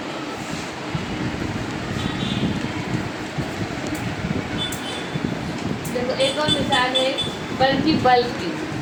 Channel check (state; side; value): identical; both; correlation 1.00